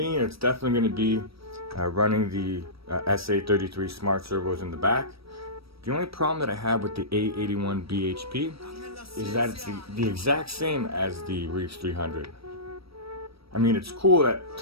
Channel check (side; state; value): left; late; 0.76 ms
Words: it's definitely going to be running the SA33 smart servos in the back. The only problem that I have with the A81BHP is that it's the exact same as the Reefs 300. I mean, it's cool